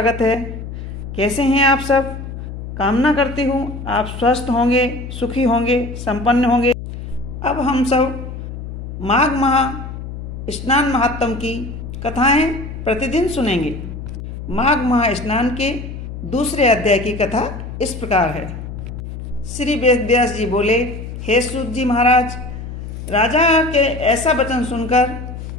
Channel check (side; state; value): left; noise; hum, 9 dB below the sound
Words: है। कैसे हैं आप सब? कामना करती हूँ आप स्वस्थ होंगे, सुखी होंगे, संपन्न होंगे। अब हम सब माघ माह स्नान महात्म की कथाएं प्रतिदिन सुनेंगे। माघ माह स्नान के दूसरे अध्याय की कथा इस प्रकार है। श्री वेद व्यास जी बोले, हे सूत जी महाराज, राजा के ऐसा वचन सुनकर